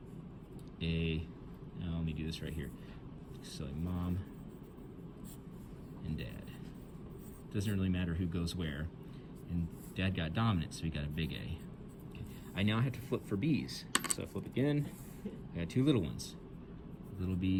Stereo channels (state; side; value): identical; both; correlation 1.00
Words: a, now let me do this right here. So mom and dad. Doesn't really matter who goes where. And dad got dominant, so we got a big A. Okay. I now have to flip for B's. So I flip again, I got 2 little ones. Little